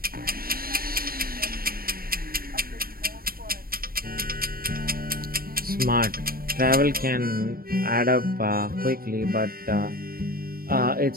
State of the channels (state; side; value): late; left; 0.43 ms